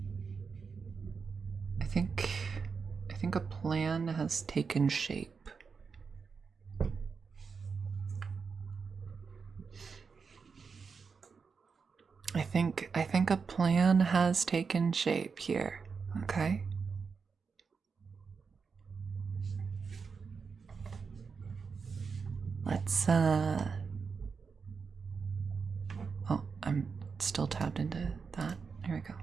I think a plan has taken shape. I think a plan has taken shape here. Okay? Let's oh, I'm still tapped into that. Here we go.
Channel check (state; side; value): quieter; left; 5.4 dB